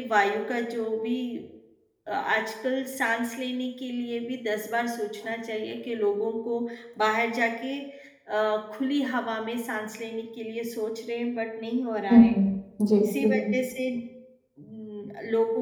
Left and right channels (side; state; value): both; identical; correlation 1.00